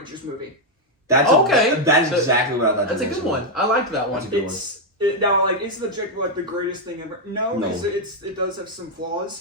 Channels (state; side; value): normal; both; correlation 0.01